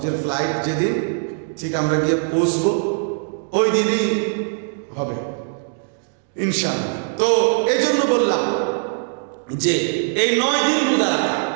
ফ্লাইট যেদিন ঠিক আমরা গিয়ে পৌঁছবো ওই দিনই হবে ইনশাআল্লাহ। তো এই জন্য বললাম যে এই 9 দিন রোজা রাখা,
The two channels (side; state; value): left; silent; 65 dB below the other